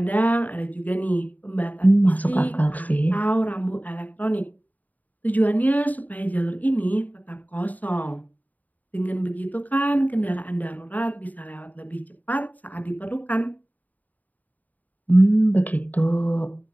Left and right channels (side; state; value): right; late; 0.078 ms